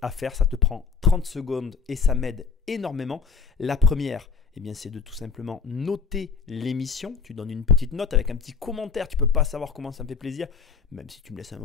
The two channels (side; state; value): right; quieter; 5.5 dB